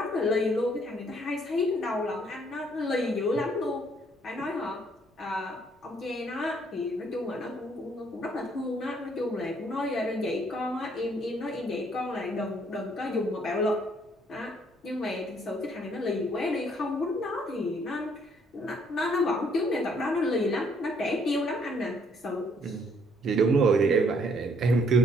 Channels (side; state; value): both; normal; correlation 0.66